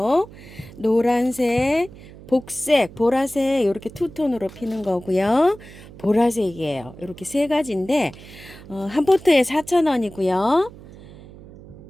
노란색, 복색, 보라색 이렇게 투톤으로 피는 거고요. 보라색이에요. 이렇게 세 가지인데 한 포트에 4,000원이고요.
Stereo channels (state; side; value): noise; right; hum, 19 dB below the sound